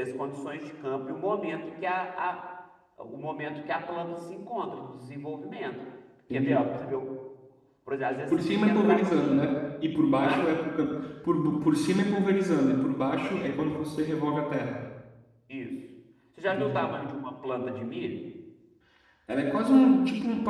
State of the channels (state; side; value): identical; both; correlation 1.00